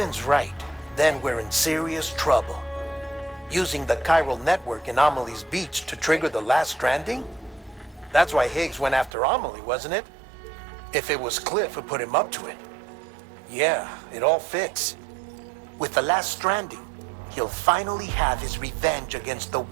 right, then we're in serious trouble. Using the chiral network in Amelie's beach to trigger the last stranding? That's why Higgs went after Amelie, wasn't it? If it was Cliff who put him up to it. Yeah, it all fits. With the last stranding, he'll finally have his revenge against the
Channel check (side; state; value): left; drops out; at 9.1 s